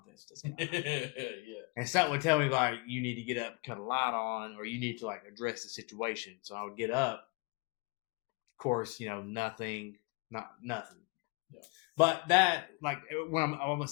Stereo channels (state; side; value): quieter; right; 29.9 dB